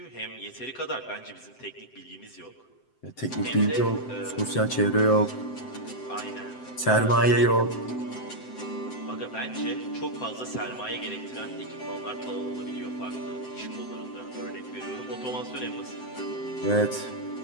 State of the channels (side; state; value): right; late; 7.8 ms